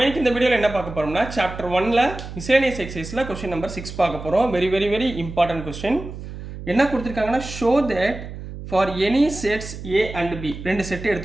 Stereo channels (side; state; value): right; noise; hum, 11 dB below the sound